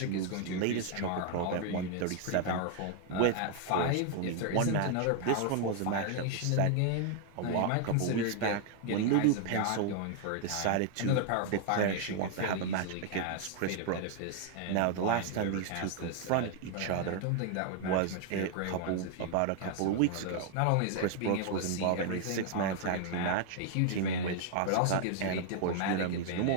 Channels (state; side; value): different; both; correlation 0.00